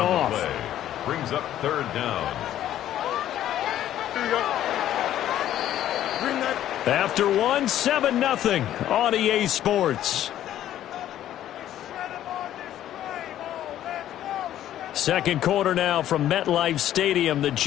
Brings up 3rd down. Here you go. Bring that. After one, 7-0 on EA Sports. Second quarter now from MetLife Stadium. The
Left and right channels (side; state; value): right; quieter; 12.1 dB